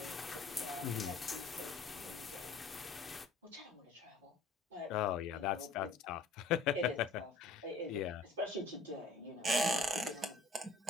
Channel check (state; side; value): quieter; right; 3.4 dB